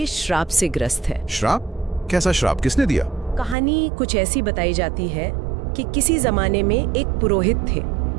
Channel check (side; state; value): left; drops out; at 3.6 s